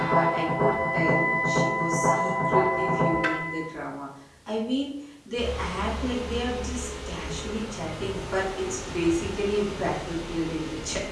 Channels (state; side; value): identical; both; correlation 1.00